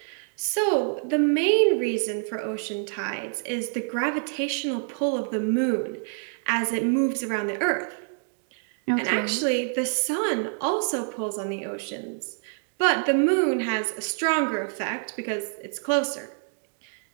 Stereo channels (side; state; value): left; silent; 60 dB below the other